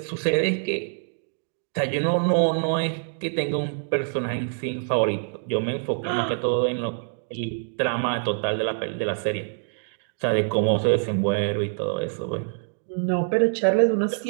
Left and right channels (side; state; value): left; silent; digital silence